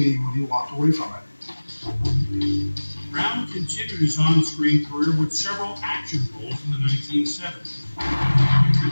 when he walked away from it. Brown continued his on-screen career with several action roles in the 1970s.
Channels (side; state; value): both; inverted; correlation -1.00